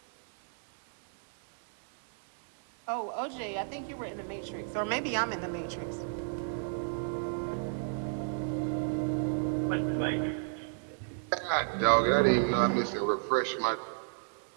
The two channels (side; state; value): left; silent; digital silence